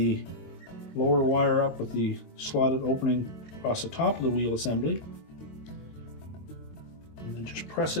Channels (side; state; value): right; late; 22 ms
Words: lower wire up with the slotted opening across the top of the wheel assembly, and then just press